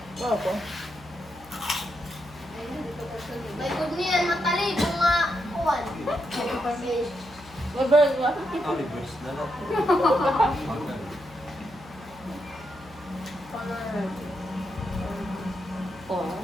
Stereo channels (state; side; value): noise; left; hum, 22 dB below the sound